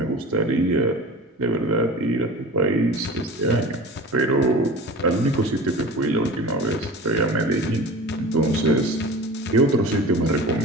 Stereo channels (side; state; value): both; normal; correlation 0.34